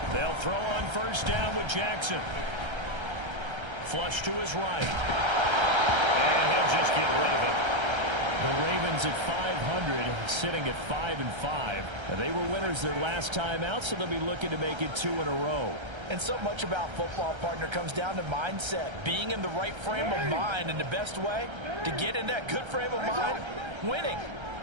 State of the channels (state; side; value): late; left; 1.3 ms